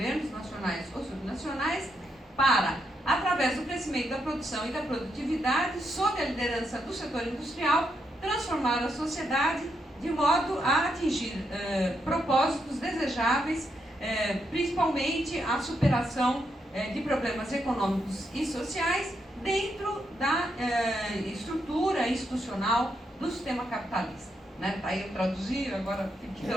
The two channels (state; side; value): normal; both; correlation 0.80